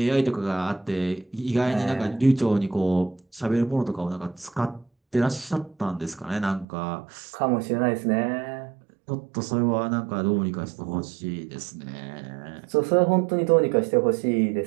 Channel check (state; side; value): drops out; left; at 6.7 s